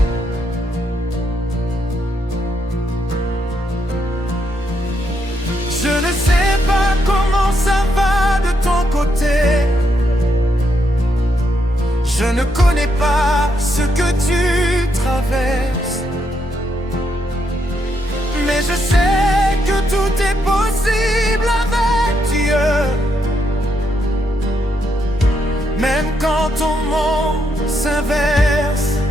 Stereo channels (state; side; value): normal; both; correlation 0.78